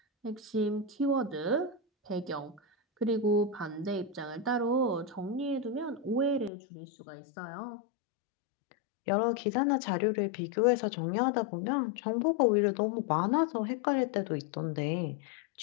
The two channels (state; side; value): drops out; right; at 6.5 s